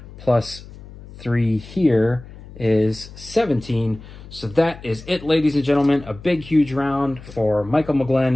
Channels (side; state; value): left; noise; hum, 17 dB below the sound